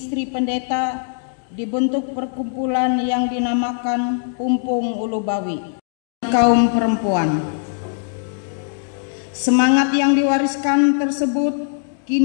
pendeta dibentuk perkumpulan yang dinamakan Pumpung Ulubawi kaum perempuan. Semangat yang diwariskan tersebut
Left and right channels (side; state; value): right; silent; 65 dB below the other